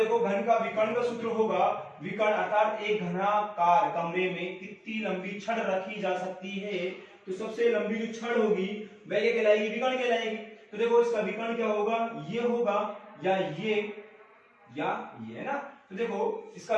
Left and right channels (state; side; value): identical; both; correlation 1.00